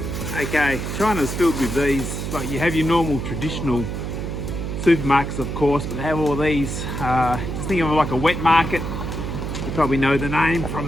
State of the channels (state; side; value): noise; right; hum, 4 dB below the sound